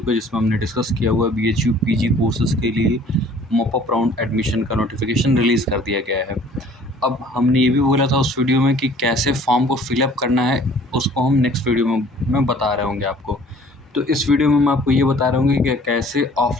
को, जिसमें हमने डिस्कस किया हुआ बीएचयू पीजी कोर्सेज़ के लिए मॉप अप राउंड एडमिशन का नोटिफिकेशन रिलीज़ कर दिया गया है। अब हमने ये भी बोला था उस वीडियो में कि कैसे फॉर्म को फिलअप करना है, उसको हम नेक्स्ट वीडियो में मैं बता रहे होंगे आपको। तो इस वीडियो में मैं आपको ये बता रहा हूँ कि कैसे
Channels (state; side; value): normal; both; correlation 0.53